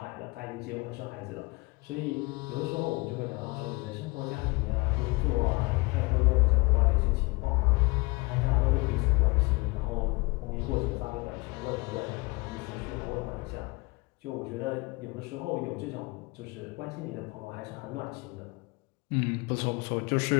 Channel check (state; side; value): quieter; right; 25.8 dB